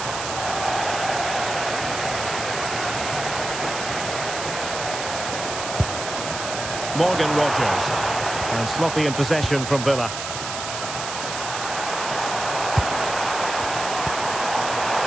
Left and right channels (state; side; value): noise; right; hiss, 6 dB below the sound